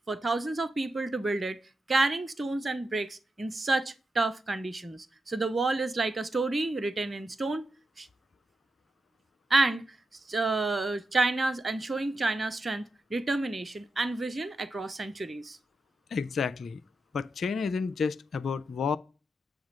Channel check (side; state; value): both; normal; correlation 0.87